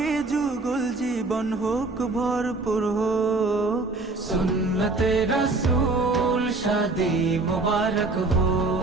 যুগল জীবন হোক ভরপুর হোক। সুন্নতে রসূল শাদি মুবারক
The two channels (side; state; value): left; quieter; 3.4 dB